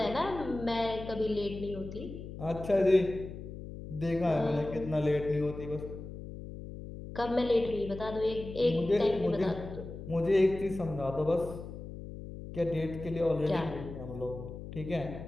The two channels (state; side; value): noise; left; hum, 11 dB below the sound